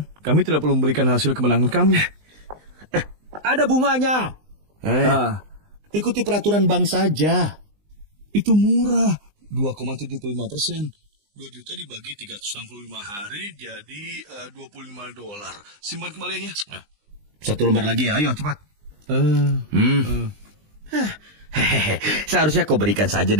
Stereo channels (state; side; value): late; left; 20 ms